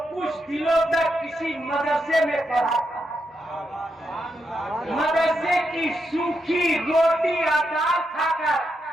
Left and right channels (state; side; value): normal; both; correlation 0.83